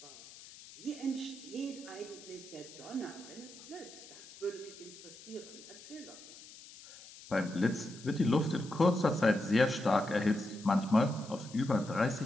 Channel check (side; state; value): left; noise; hiss, 18 dB below the sound